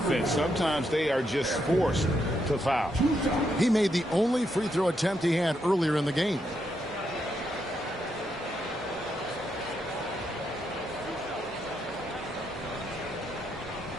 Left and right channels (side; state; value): both; normal; correlation 0.80